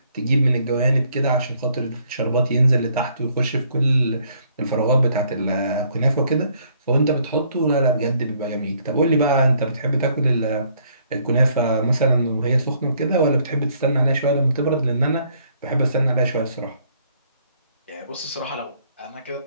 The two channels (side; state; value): both; inverted; correlation -0.66